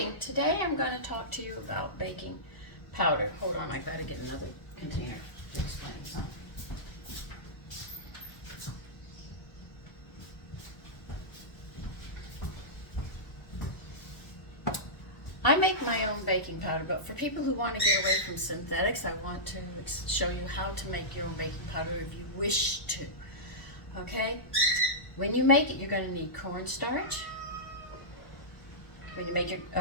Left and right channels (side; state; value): right; late; 1.1 ms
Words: Today I'm going to talk to you about baking powder. Hold on, I gotta get another container to explain something. I make my own baking powder, but for people who want to get away from synthetics, I want to show you how to make your own baking powder if you wish to. Okay? When you make it, you're going to need cornstarch. When you make your